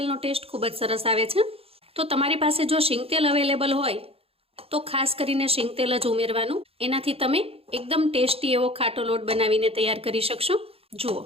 ટેસ્ટ ખૂબ જ સરસ આવે છે. તો તમારી પાસે જો શીંગતેલ અવેલેબલ હોય તો ખાસ કરીને શીંગતેલ જ ઉમેરવાનું. એનાથી તમે એકદમ ટેસ્ટી એવો ખાટો લોટ બનાવીને તૈયાર કરી શકશો. જુઓ,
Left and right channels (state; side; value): late; left; 0.28 ms